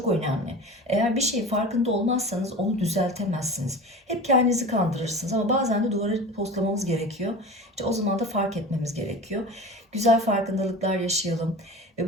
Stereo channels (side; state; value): both; normal; correlation 0.35